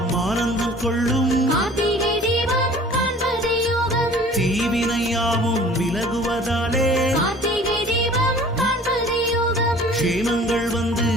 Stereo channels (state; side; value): normal; both; correlation 0.48